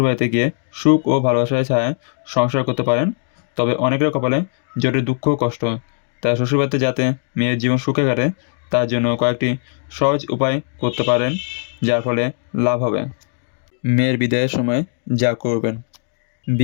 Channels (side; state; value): right; silent; digital silence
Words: গিয়ে সুখ ও ভালোবাসার ছায়ায় সংসার করতে পারেন। তবে অনেকের কপালে জোটে দুঃখ ও কষ্ট। তাই শ্বশুরবাড়িতে যাতে মেয়ের জীবন সুখে কাটে তার জন্য কয়েকটি সহজ উপায় করতে পারেন, যার ফলে লাভ হবে। মেয়ের বিদায়ের সময় যা করবেন।